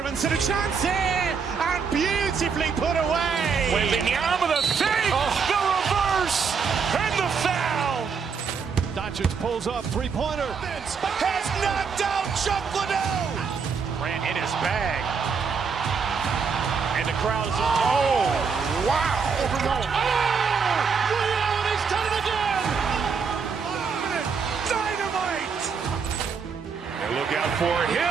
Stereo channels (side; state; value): left; quieter; 5.8 dB